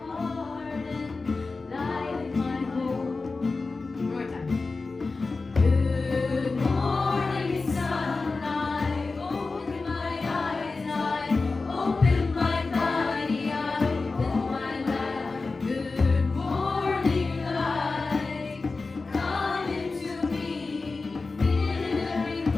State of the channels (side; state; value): right; quieter; 3.9 dB